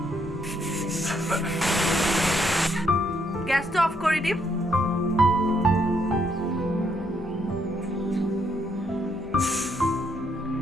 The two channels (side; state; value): both; normal; correlation 0.73